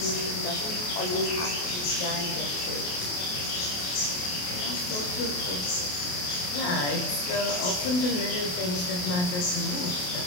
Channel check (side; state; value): right; late; 28 ms